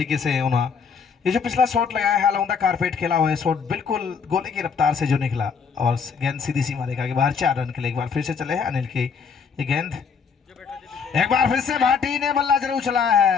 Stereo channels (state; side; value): quieter; right; 6.0 dB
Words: से उन्होंने ये जो पिछला शॉट लगाया है अलौंदा कारपेट खेला हुआ है शॉट, बिल्कुल गोले की रफ्तार से जो निकला और गेंद सीधी सीमा रेखा के बाहर 4 रन के लिए। एक बार फिर से चले हैं अनिल की ये गेंद, एक बार फिर से भाटी ने बल्ला जरूर चलाया